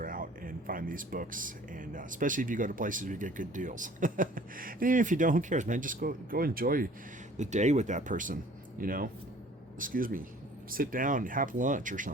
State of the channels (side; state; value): both; normal; correlation 0.52